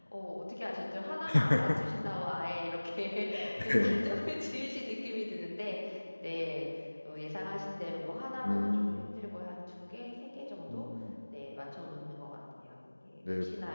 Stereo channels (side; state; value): both; inverted; correlation -1.00